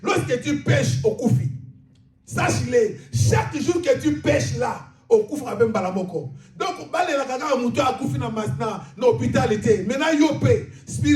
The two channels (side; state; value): both; identical; correlation 1.00